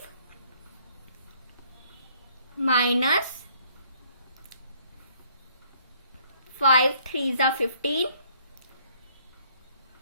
minus 5 3 the 15.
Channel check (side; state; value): both; inverted; correlation -0.64